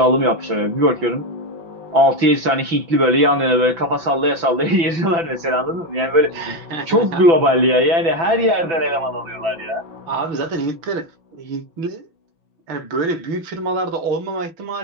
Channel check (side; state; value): left; late; 6.0 ms